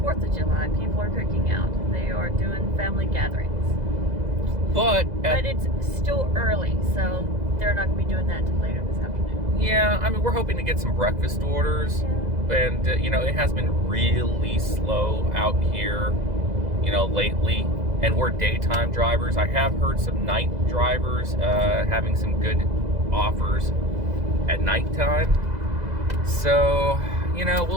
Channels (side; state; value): left; late; 2.0 ms